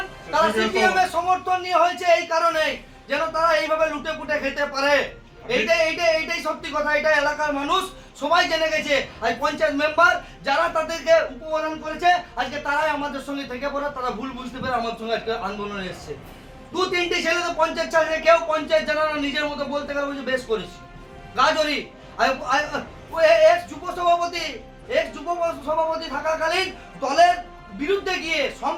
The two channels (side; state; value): both; identical; correlation 1.00